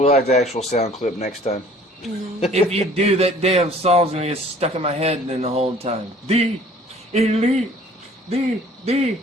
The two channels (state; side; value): normal; both; correlation 0.52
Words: have the actual sound clip next time. if you do, that damn song's going to get stuck in my head then the whole time. The Elite. The